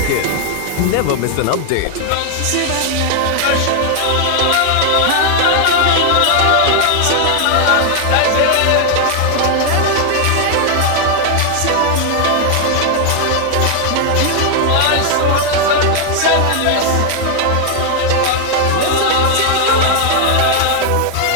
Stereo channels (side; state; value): both; different; correlation 0.00